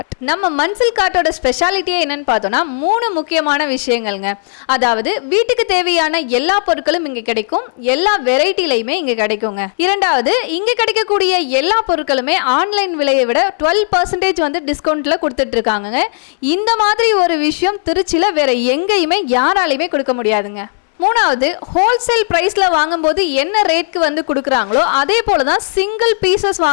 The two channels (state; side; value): silent; right; digital silence